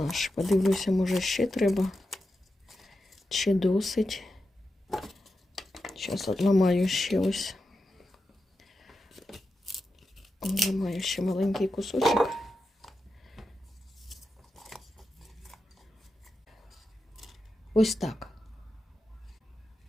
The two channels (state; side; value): normal; both; correlation 0.89